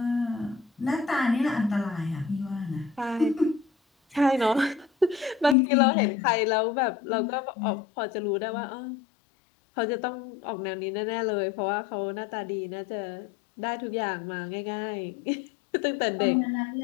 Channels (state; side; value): drops out; right; at 5.6 s